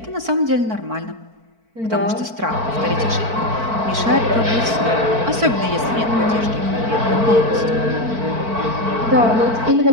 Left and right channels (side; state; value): left; late; 4.5 ms